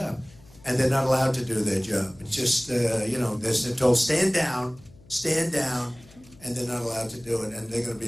and they're not allowed to do their job. It's just they're told stand down, and they're not allowed to do it. And they're going to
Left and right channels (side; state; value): left; noise; hum, 25 dB below the sound